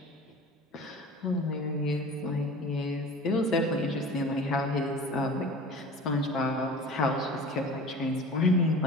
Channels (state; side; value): normal; both; correlation 0.40